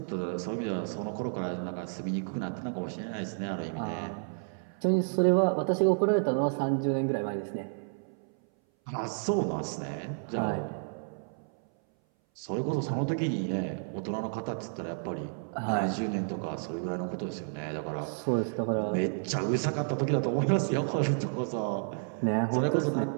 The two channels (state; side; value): silent; left; 57 dB below the other